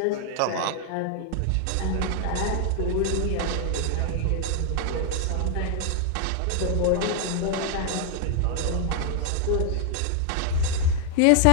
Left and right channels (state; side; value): different; both; correlation 0.00